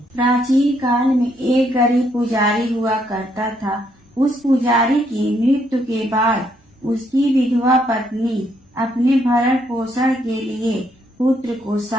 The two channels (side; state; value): both; normal; correlation 0.73